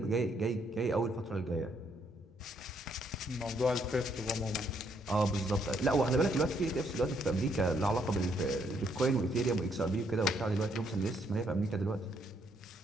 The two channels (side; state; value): both; normal; correlation 0.71